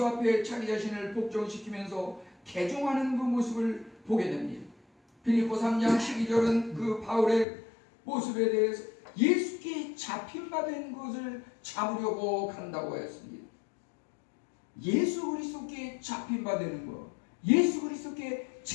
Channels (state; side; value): drops out; right; at 7.5 s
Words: 앞에 자기 자신을 복종시키면서 개종하는 그 모습을 보게 됩니다. 빌립보 3장 12절은 그 바울의 모습에 대해서 예수께 잡힌바된 것을 잡으려고 간다고 했습니다. 예수 그리스도께 잡힌바되는 것, 예수 그리스도께